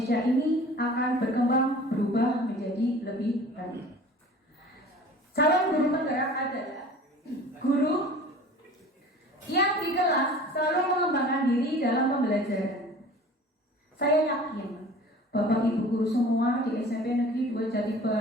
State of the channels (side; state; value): both; normal; correlation 0.44